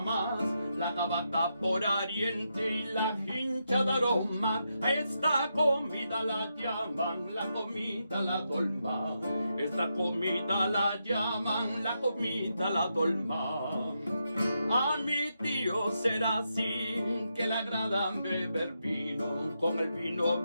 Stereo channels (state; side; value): inverted; both; correlation -0.84